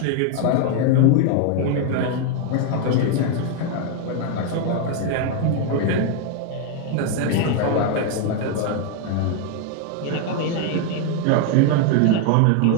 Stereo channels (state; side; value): different; both; correlation 0.00